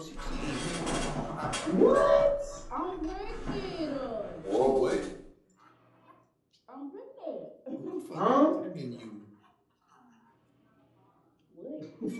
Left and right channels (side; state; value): both; identical; correlation 1.00